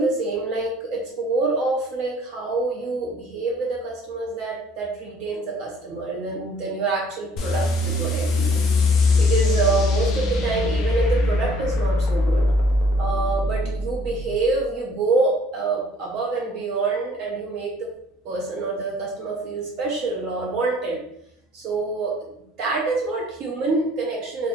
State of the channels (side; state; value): both; normal; correlation 0.57